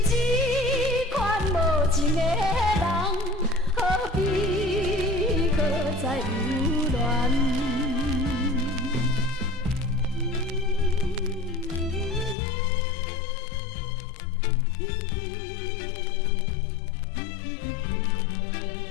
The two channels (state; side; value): drops out; right; at 12.4 s